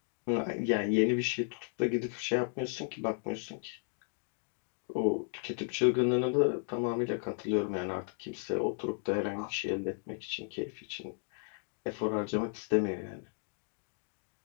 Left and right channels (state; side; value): silent; right; 55 dB below the other